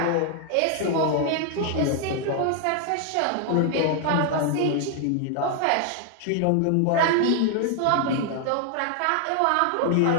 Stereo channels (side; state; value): both; different; correlation 0.00